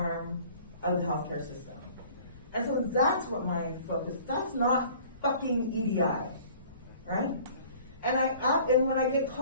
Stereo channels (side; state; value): both; inverted; correlation -0.50